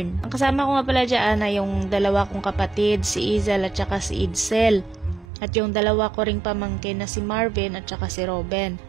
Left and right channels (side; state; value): left; drops out; at 5.2 s